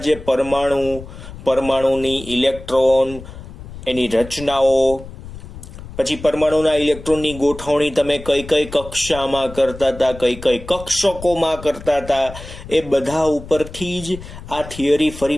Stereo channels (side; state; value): left; noise; rumble, 14 dB below the sound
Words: જે પરમાણુની ઇલેક્ટ્રોન, એની રચનાઓ, પછી પરમાણુના ઇલેક્ટ્રોનની ગોઠવણી તમે કઈ કઈ કક્ષામાં કરતા હતા, કઈ કઈ કક્ષકોમાં કરતા હતા, એ બધા ઉપરથી જ આ થિયરી